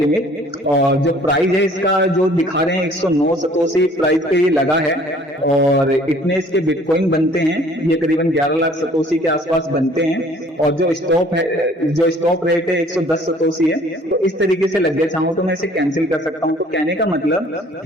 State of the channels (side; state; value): both; normal; correlation 0.55